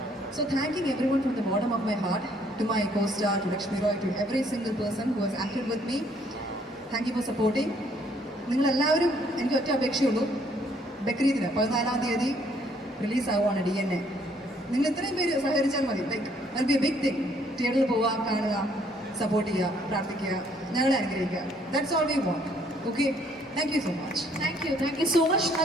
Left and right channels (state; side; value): normal; both; correlation 0.65